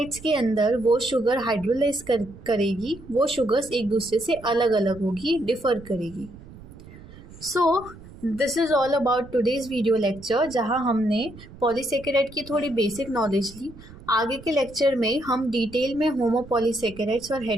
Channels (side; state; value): right; noise; rumble, 18 dB below the sound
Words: के अंदर वो शुगर हाइड्रोलाइज करेगी, वो शुगर्स एक दूसरे से अलग अलग होगी, डिफर करेगी. So this is all about today's video lecture, जहाँ हमने पॉलीसेकेराइड की थोड़ी बेसिक नॉलेज ली. आगे के लेक्चर में हम डिटेल में होमोपॉलीसेकेराइड्स और